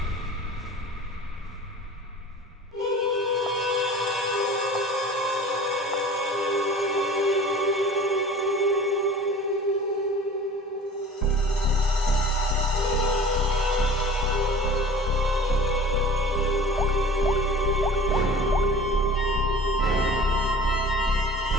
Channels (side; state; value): both; normal; correlation 0.43